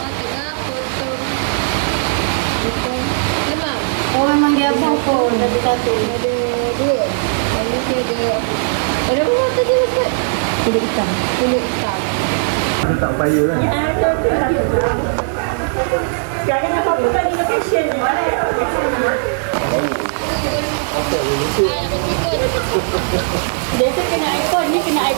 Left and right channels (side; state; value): left; silent; digital silence